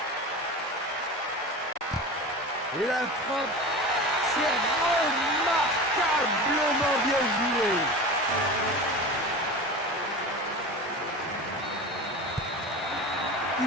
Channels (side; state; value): both; normal; correlation 0.31